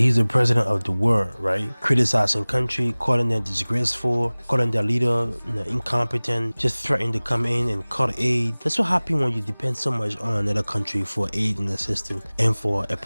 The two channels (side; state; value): both; inverted; correlation -1.00